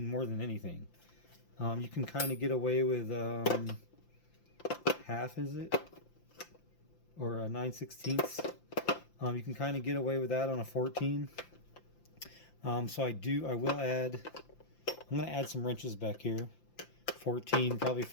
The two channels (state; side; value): late; right; 5.8 ms